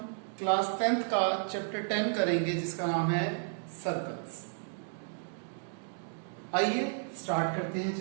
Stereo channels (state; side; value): silent; left; digital silence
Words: क्लास 10th का चैप्टर 10 करेंगे जिसका नाम है सर्कल्स। आइए स्टार्ट करते हैं